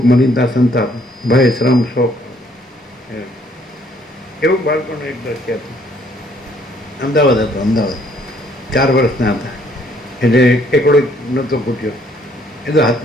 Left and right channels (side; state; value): both; normal; correlation 0.65